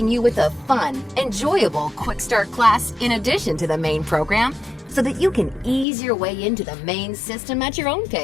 you with a fun, enjoyable quick start class in addition to the main program so that you can ease your way into the main system at your own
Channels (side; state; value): right; drops out; at 5.9 s